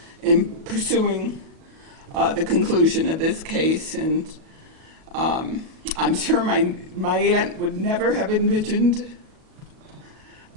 in pursuing the conclusion of this case. And I'm sure my aunt would never have envisioned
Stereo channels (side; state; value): left; late; 37 ms